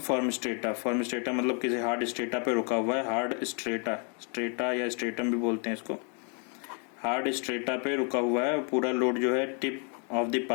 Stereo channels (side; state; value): right; quieter; 37.8 dB